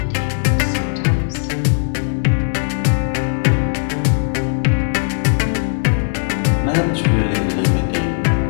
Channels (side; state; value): right; silent; digital silence